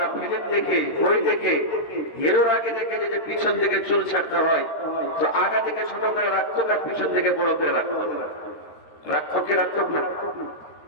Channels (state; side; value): late; right; 13 ms